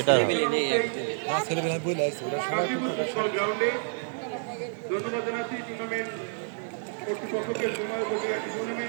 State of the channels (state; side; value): silent; left; digital silence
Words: ফুটবল গ্রাউন্ডে। ধন্যবাদ জানাচ্ছি টুর্নামেন্ট কর্তৃপক্ষকে, সময় উপযোগী একটি